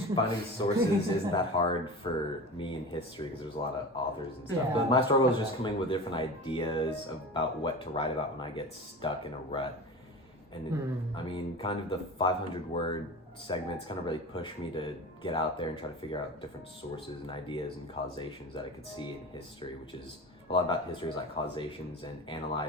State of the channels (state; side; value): normal; both; correlation 0.31